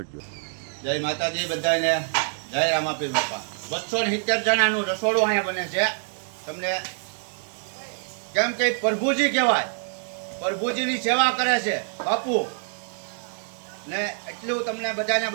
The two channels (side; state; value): left; silent; 61 dB below the other